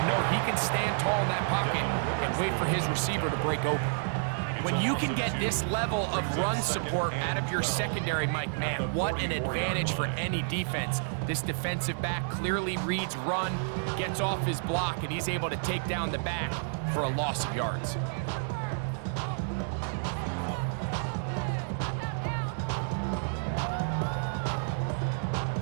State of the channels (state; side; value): silent; left; digital silence